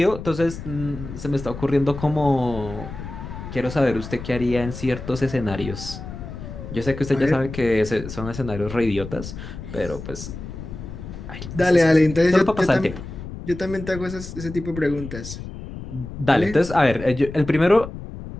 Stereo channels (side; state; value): left; noise; rumble, 10 dB below the sound